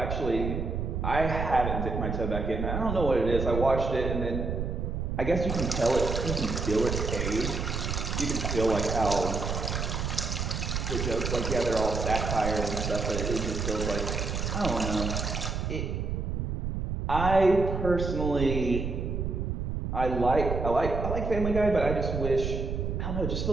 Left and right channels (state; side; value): noise; right; rumble, 2 dB below the sound